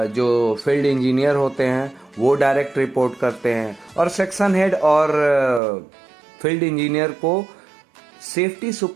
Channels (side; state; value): left; drops out; at 5.6 s